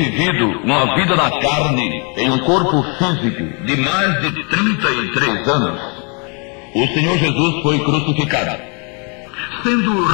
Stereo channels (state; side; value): quieter; right; 36.0 dB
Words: uma vida na carne, em um corpo físico de mais de 33 anos, o Senhor Jesus foi crucificado. Sendo